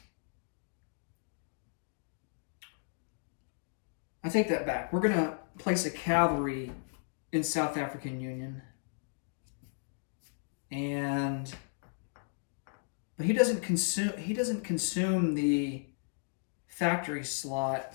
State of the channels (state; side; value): silent; right; digital silence